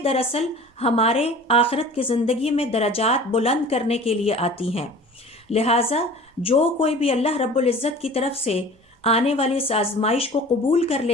دراصل ہمارے آخرت کی زندگی میں درجات بلند کرنے کے لیے آتی ہیں۔ لہٰذا جو کوئی بھی اللہ رب العزت کی طرف سے آنے والی اس آزمائش کو قبول کر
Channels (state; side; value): normal; both; correlation 0.42